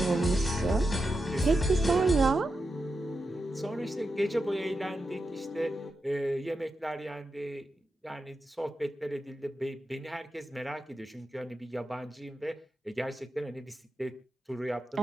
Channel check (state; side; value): normal; both; correlation 0.88